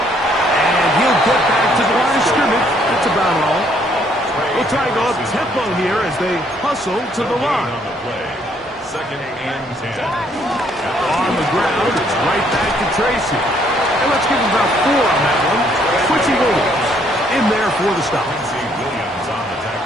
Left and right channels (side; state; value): both; normal; correlation 0.67